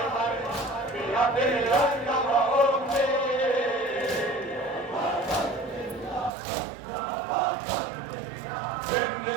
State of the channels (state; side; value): drops out; left; at 6.3 s